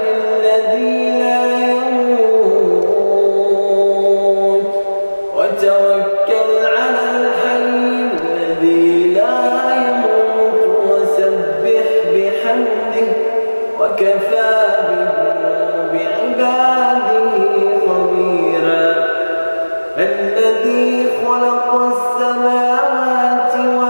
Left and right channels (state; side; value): inverted; both; correlation -1.00